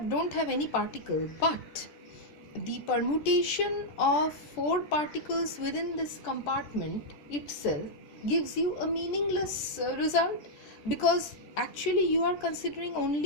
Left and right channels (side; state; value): right; late; 13 ms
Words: don't have any particle, but the permutation of 4 particles within this compartment itself gives you a meaningless result, because actually you are considering